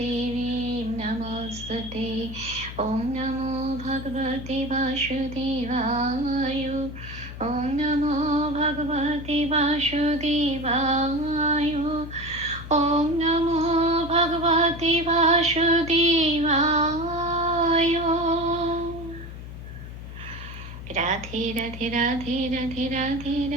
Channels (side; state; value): left; noise; hum, 11 dB below the sound